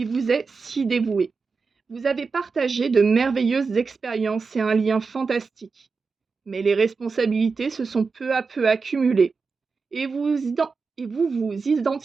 vous est si dévoué. Vous avez partagé de merveilleuses expériences et un lien fantastique. Mais les responsabilités se sont peu à peu accumulées et vous vous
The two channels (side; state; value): left; quieter; 4.7 dB